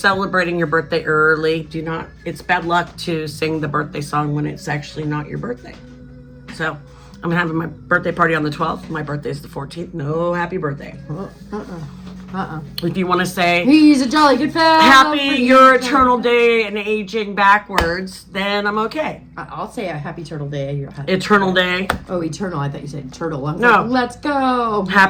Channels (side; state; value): both; identical; correlation 1.00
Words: your birthday early. Do not. It's bad luck to sing the birthday song when it's actually not your birthday. So I'm having my birthday party on the 12th. My birthday is the 14th. No happy birthday. If you want to say, he's a jolly good fellow. Happy your eternal day and aging backwards, then I'm okay. I'll say a happy turtle day. Eternal day. Oh, eternal. I thought you said turtle. No. Like, let's go.